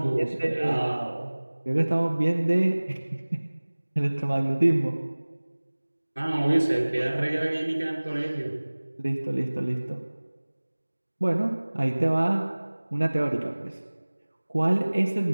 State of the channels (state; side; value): inverted; both; correlation -1.00